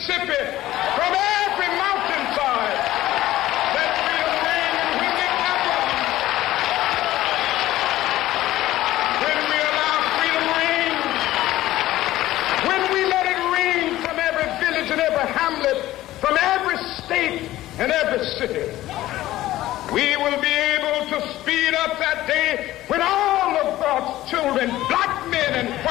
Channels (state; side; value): quieter; right; 15.4 dB